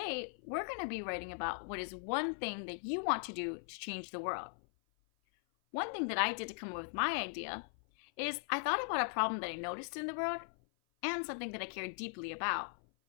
we're going to be writing about what is one thing that you want to do to change the world. One thing that I did to come up with my idea is I thought about a problem that I noticed in the world and something that I cared deeply about.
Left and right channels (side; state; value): right; silent; 52 dB below the other